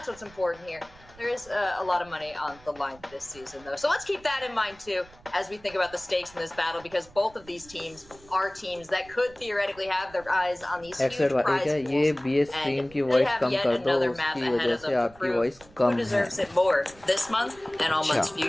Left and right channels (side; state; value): right; noise; rumble, 24 dB below the sound